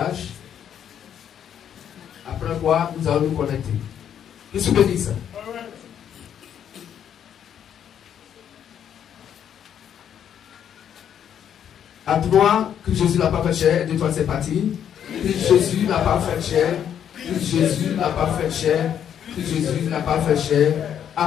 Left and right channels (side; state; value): right; quieter; 9.2 dB